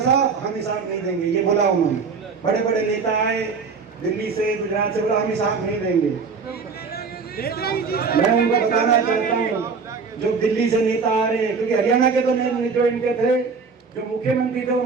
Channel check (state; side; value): quieter; left; 5.1 dB